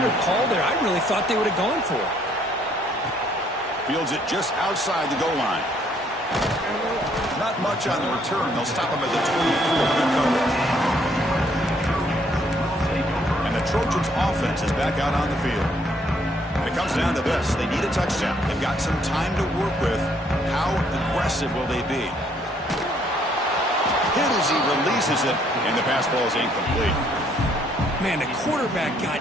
call there. I really thought they would have gone for it. Fields it just outside the goal line. Not much on the return. They'll stop him at the 24. Good coverage. And the Trojans' offense is back out on the field. And it comes down to this. They need a touchdown. They've got some time to work with. How aggressive will they be? Hit as he releases it, and the pass ball is incomplete. Man, the quarterback got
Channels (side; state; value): both; normal; correlation 0.67